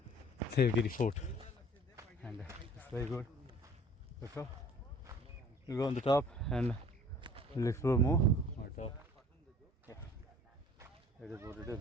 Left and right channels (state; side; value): normal; both; correlation 0.50